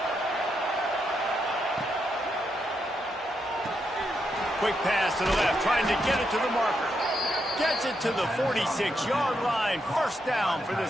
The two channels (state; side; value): normal; both; correlation 0.81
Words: Quick pass to the left, trying to get it to the marker. Gets it to the 46-yard line. First down for